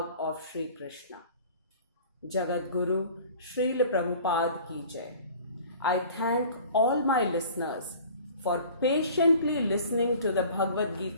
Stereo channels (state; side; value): inverted; both; correlation -0.46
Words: of Shri Krishna. Jagat Guru Srila Prabhupada Ki Jai. I thank all my listeners for patiently listening to the Bhagavad